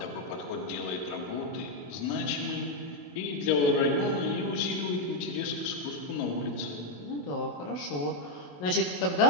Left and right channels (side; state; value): right; late; 28 ms